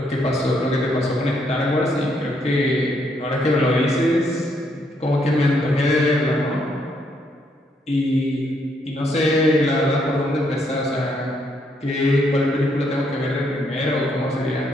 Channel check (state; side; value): normal; both; correlation 0.73